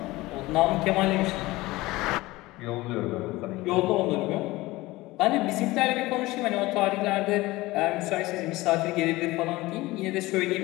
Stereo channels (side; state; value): right; quieter; 19.7 dB